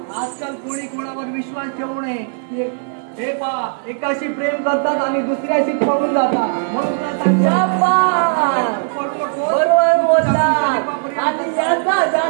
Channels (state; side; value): silent; left; digital silence